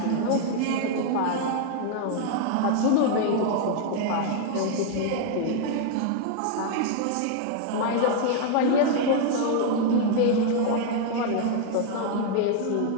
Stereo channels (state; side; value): different; both; correlation 0.00